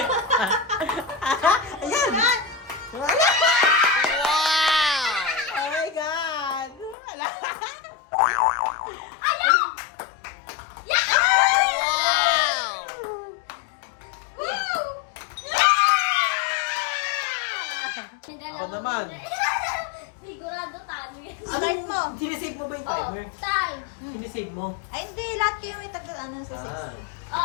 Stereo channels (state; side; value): drops out; right; at 7.0 s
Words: Ayan! Wala! Oh my God! Wala! Ako naman. Sigurado talo yan. Start mo. Sinisave mo ba yung timer? Time. Sinisave mo? Ay, hindi. Lahat kayo may tagal ano sa 6.